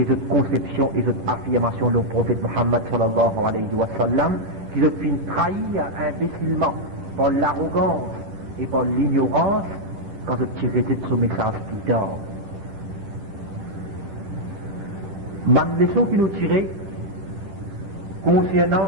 cette conception et cette affirmation du prophète Muhammad sallallahu alayhi wa sallam, qui se fait trahir imbécilement par l'arrogance et par l'ignorance quand je tirais de ce message plus tard. Même leçon qui nous tirait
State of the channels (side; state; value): left; late; 11 ms